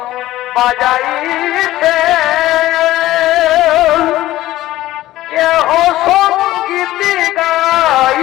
বাজাইছে, কেহ সঙ্গীত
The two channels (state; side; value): quieter; right; 15.7 dB